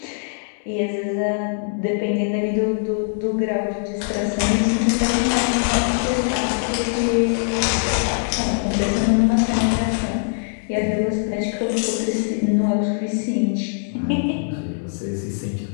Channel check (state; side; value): silent; right; digital silence